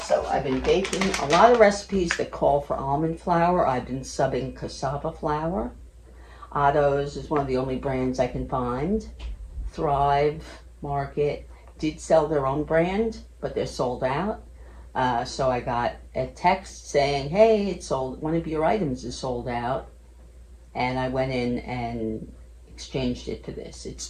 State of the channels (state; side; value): identical; both; correlation 1.00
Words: I've been baking a lot of recipes that call for almond flour. I've been subbing cassava flour. Otto's is one of the only brands I can find. Thrive Market did sell their own brand, but they're sold out. So I got a text saying, hey, it's sold, one of your items is sold out. And I went in and exchanged it for this. It's